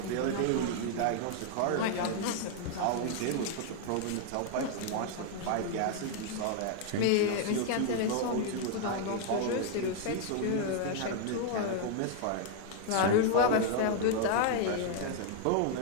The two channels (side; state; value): both; different; correlation 0.00